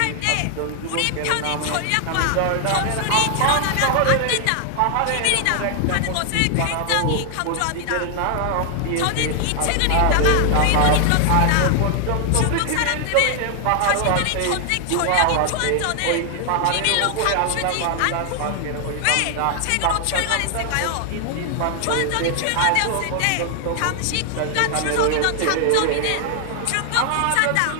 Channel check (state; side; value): different; both; correlation 0.00